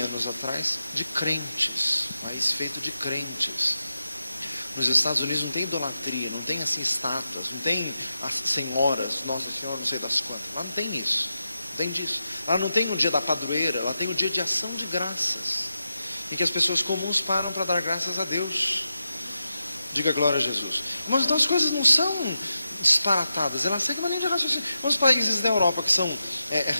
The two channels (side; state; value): both; inverted; correlation -0.89